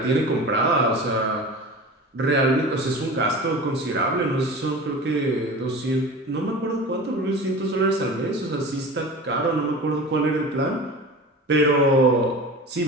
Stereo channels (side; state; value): both; normal; correlation 0.34